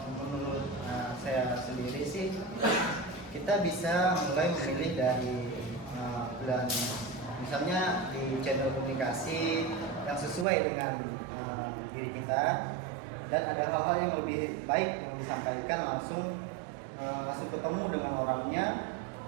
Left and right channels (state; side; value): drops out; left; at 10.5 s